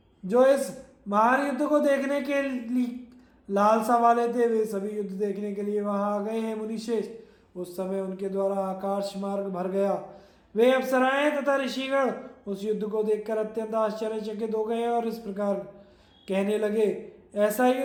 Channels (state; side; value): identical; both; correlation 1.00